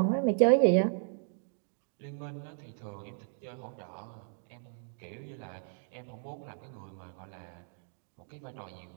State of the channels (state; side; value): silent; left; digital silence